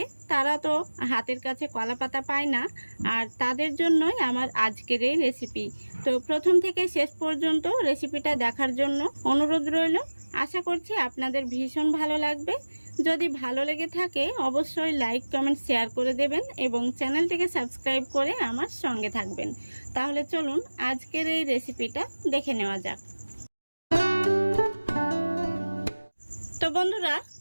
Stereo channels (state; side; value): inverted; both; correlation -1.00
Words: তারা তো হাতের কাছে কলাপাতা পায় না, আর তাদের জন্যই আমার আজকের এই রেসিপি। তো প্রথম থেকে শেষ পর্যন্ত রেসিপিটা দেখার জন্য অনুরোধ রইল। আশা করছি আপনাদের ভীষণ ভালো লাগবে। যদি ভালো লেগে থাকে অবশ্যই লাইক কমেন্ট শেয়ার করে দেবেন এবং চ্যানেলটিকে সাবস্ক্রাইব করে আমার সঙ্গে থাকবেন। তাহলে চলুন আজকের এই রেসিপিটা দেখে নেওয়া যাক। তো বন্ধুরা,